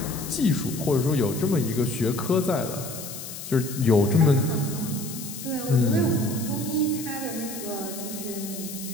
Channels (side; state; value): left; noise; hiss, 10 dB below the sound